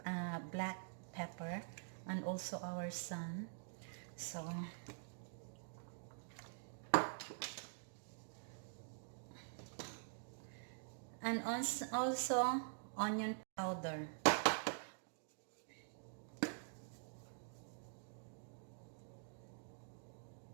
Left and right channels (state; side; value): silent; left; digital silence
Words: pepper, and also our son. So and also onion powder.